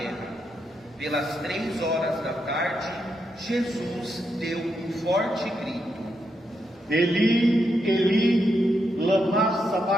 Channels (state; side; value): normal; both; correlation 0.82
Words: Pelas 3 horas da tarde, Jesus deu um forte grito: Eli, Eli, lama